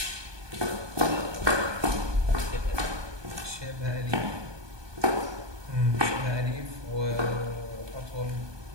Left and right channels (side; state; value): left; late; 1.2 ms